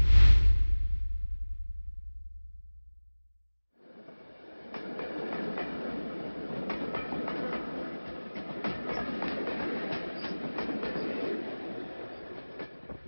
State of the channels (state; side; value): inverted; both; correlation -1.00